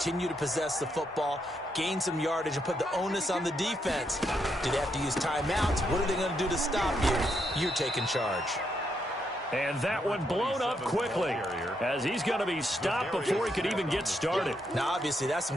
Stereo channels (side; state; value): both; normal; correlation 0.78